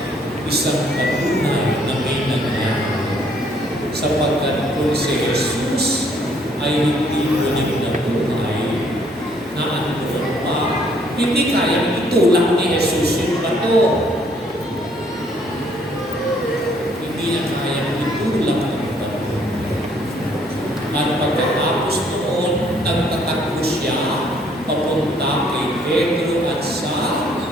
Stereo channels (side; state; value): both; normal; correlation 0.64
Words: Isang patunay na may nangyari. Sapagkat kung si Jesus ay hindi ulit na buhay, na ano pa, hindi kayang itulak ni Jesus yung bato. Hindi niya kayang itulak yung bato. At pagkatapos noon, nagtatakbo siya papunta kay Pedro at sa